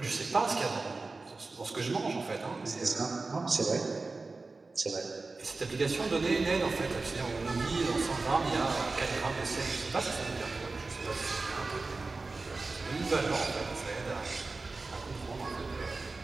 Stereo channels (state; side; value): quieter; left; 3.7 dB